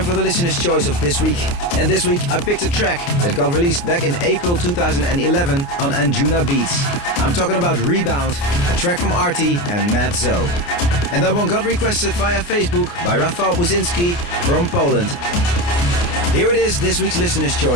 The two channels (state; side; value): late; right; 29 ms